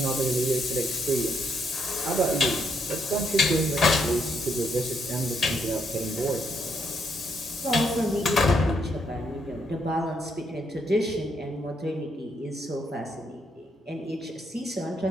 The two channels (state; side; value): normal; both; correlation 0.75